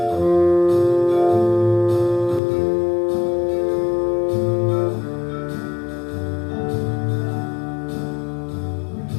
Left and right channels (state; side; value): drops out; right; at 2.4 s